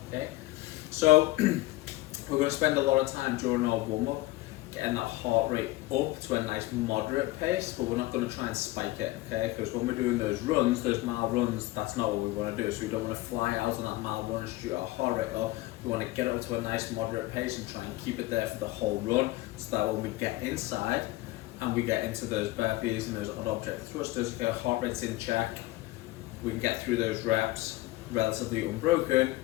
Okay. So we're going to spend a lot of time during our warm-up getting that heart rate up to a nice moderate pace, but we're not going to try and spike it, okay? Because when we're doing those runs, those mile runs, that's not what we want to do. So we don't want to fly out on that mile run and shoot our heart rate up. We want to get it to a nice moderate pace and try and keep it there for the whole run, so that when we get inside and we get into those burpees and those odd object thrusters, okay, our heart rate's in check, we can get through those reps relatively unbroken,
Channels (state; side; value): quieter; right; 18.3 dB